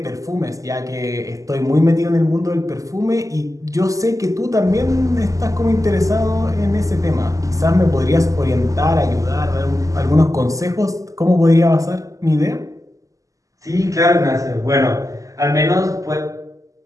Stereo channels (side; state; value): left; late; 0.16 ms